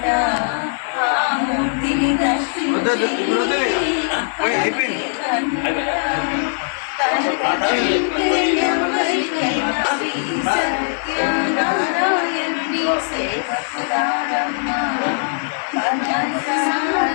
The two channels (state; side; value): silent; right; digital silence